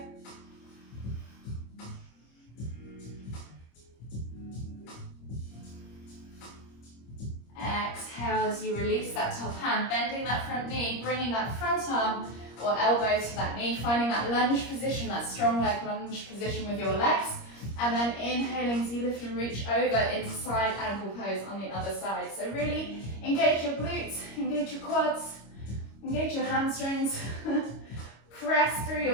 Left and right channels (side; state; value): right; late; 25 ms